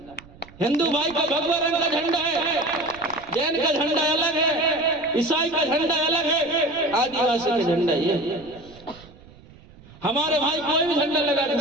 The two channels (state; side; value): noise; right; rumble, 22 dB below the sound